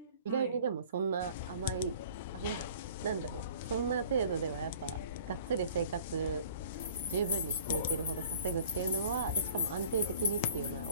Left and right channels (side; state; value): both; inverted; correlation -0.49